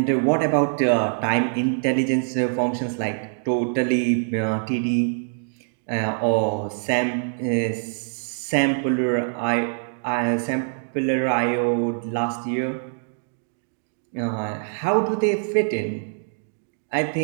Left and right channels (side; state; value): left; silent; digital silence